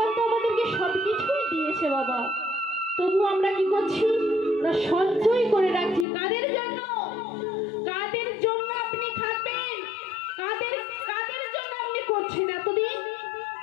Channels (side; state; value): right; drops out; at 6.1 s